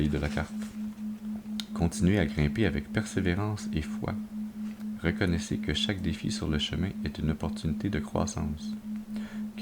de la carte. Continuez à grimper avec persévérance et foi. Reconnaissez que chaque défi sur le chemin est une opportunité de croissance.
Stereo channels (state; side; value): identical; both; correlation 1.00